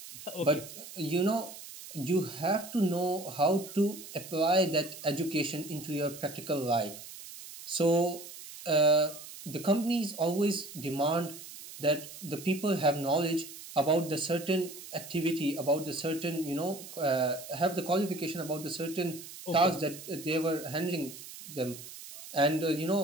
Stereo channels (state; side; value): noise; right; hiss, 14 dB below the sound